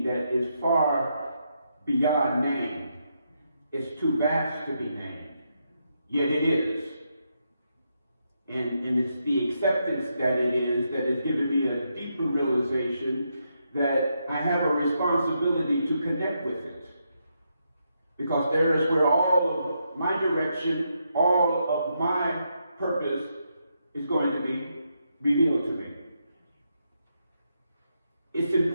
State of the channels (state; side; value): inverted; both; correlation -0.81